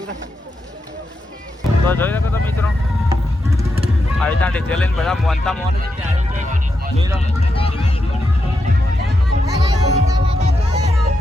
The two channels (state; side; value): normal; both; correlation 0.85